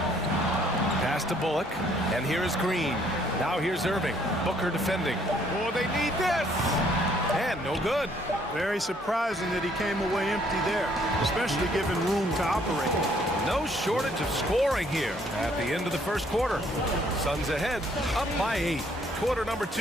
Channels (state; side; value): normal; both; correlation 0.65